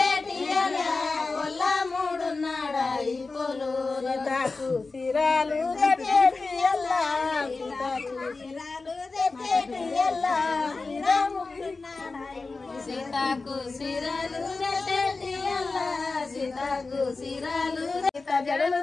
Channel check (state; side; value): quieter; right; 3.9 dB